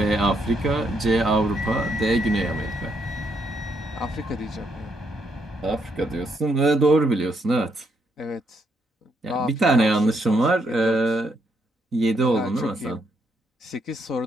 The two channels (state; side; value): normal; both; correlation 0.76